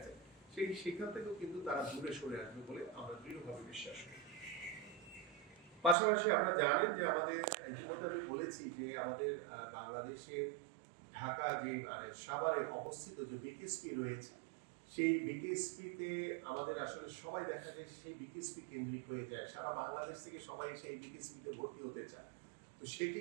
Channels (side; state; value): left; drops out; at 6.0 s